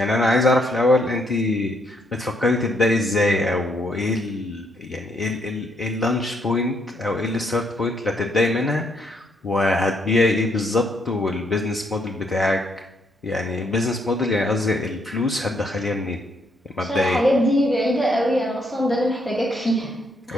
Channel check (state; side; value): normal; both; correlation 0.73